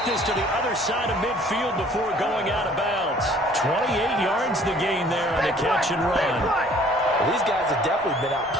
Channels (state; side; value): normal; both; correlation 0.55